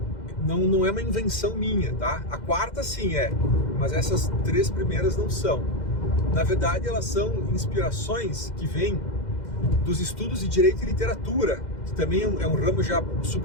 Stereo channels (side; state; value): right; late; 2.1 ms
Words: não é uma invenção minha, tá? A 4ª sim é, mas essas 3 primeiras não são. Na verdade, elas são inspirações que vêm dos estudos de direito e literatura, que também é um ramo já